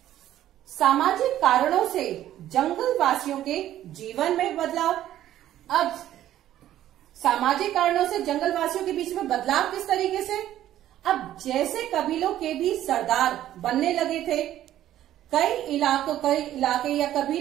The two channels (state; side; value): quieter; left; 12.6 dB